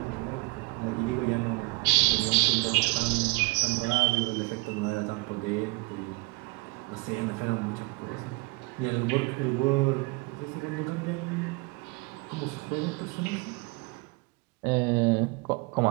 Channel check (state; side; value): quieter; left; 25.0 dB